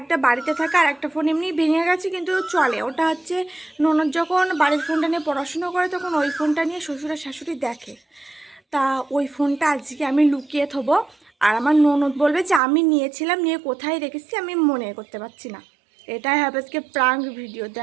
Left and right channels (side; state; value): left; drops out; at 12.6 s